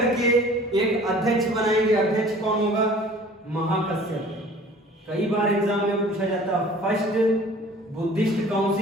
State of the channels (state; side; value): normal; both; correlation 0.48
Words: एक अध्यक्ष बनाएंगे। अध्यक्ष कौन होगा? महाकश्यप। कई बार एग्जाम में पूछा जाता, फर्स्ट बुद्धिस्ट